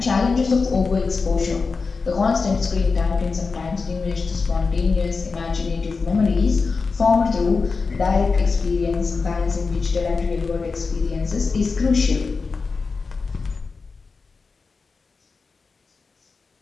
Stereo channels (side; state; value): right; quieter; 4.5 dB